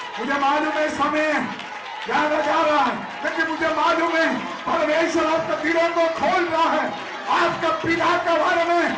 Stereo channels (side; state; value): both; identical; correlation 1.00